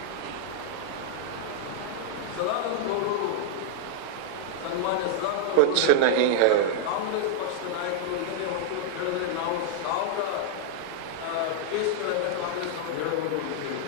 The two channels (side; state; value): both; different; correlation 0.00